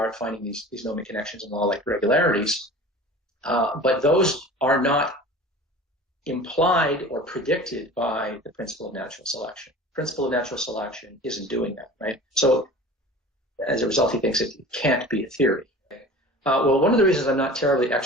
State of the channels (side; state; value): both; normal; correlation 0.39